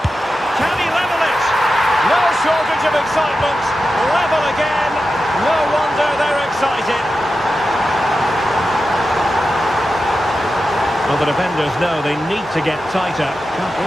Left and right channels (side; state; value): both; normal; correlation 0.91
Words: Can he level it? No shortage of excitement. Level again. No wonder they're excited. Well, the defenders know they need to get tighter. Can't